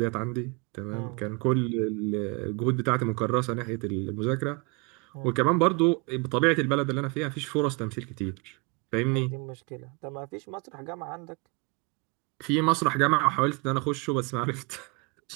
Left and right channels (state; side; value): quieter; left; 29.4 dB